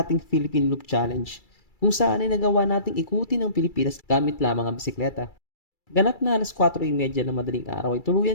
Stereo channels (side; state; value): right; late; 2.3 ms